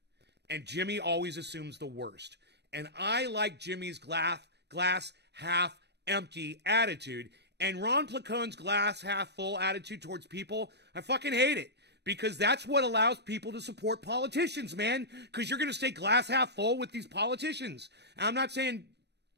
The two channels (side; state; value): left; late; 0.49 ms